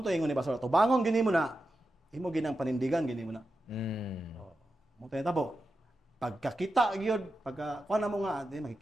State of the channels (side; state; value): both; normal; correlation 0.90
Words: to ingon ni Pastor. Atubangon gini mo na. Imo ginang panindigan gini mo na. Mo to natabo. Pagkakita gyud, kuan na mo nga,